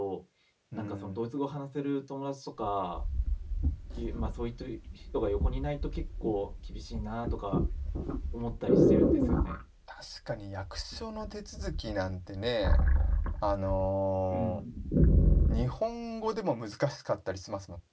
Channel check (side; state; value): both; identical; correlation 1.00